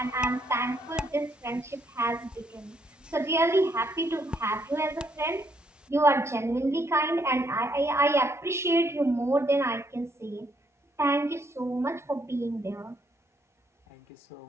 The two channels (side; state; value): both; normal; correlation 0.72